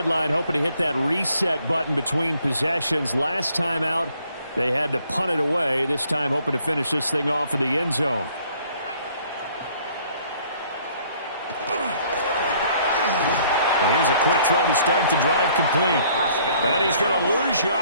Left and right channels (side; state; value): both; inverted; correlation -0.61